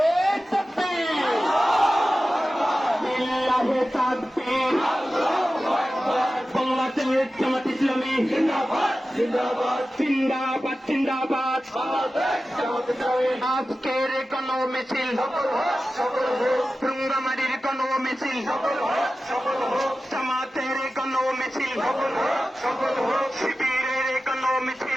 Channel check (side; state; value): both; normal; correlation 0.95